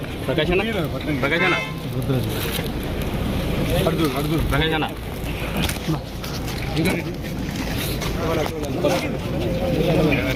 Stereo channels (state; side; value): identical; both; correlation 1.00